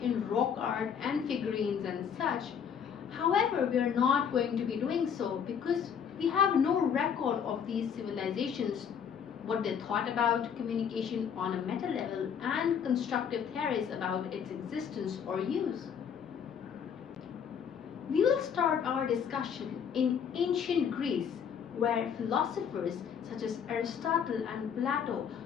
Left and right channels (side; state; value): right; quieter; 7.6 dB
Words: in rock art and figurines and such. However, we are not going to be doing so because we have no record of these civilizations, what they thought about communication on a meta level, and constructive theories about its existence or use. We will start our discussion in ancient Greece, where philosophers such as Aristotle and Plato